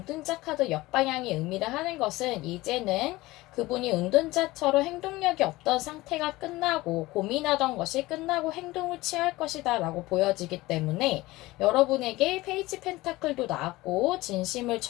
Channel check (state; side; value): quieter; right; 19.3 dB